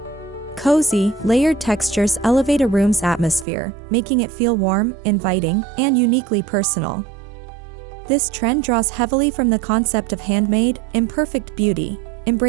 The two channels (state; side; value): drops out; left; at 3.5 s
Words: Cozy, layered textures elevate a room's atmosphere, making it feel warm, inviting, and uniquely personal. This trend draws heavily from the concept of handmade, imperfect beauty,